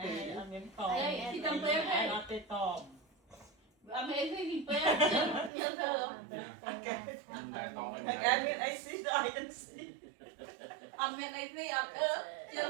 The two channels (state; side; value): drops out; left; at 5.5 s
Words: ăn miếng to. Đây, thì cầm bếp Ai đây. nó tê to. Ăn mấy cái gì bếp, nhớ thơ. Anh em biết anh xí rồi, anh xí. Ăn miếng này đi, ăn ơ,